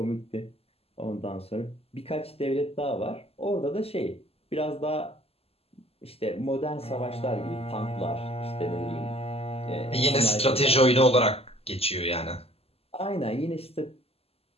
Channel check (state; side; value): late; right; 0.29 ms